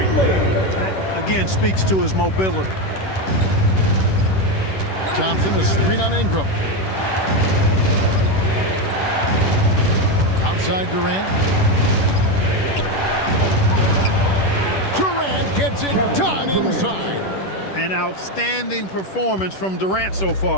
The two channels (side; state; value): right; late; 10 ms